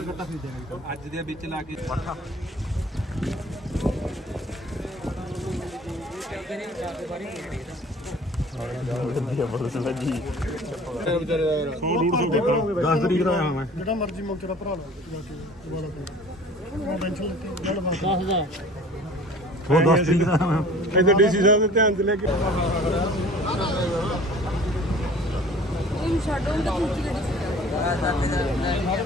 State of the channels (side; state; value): both; normal; correlation 0.47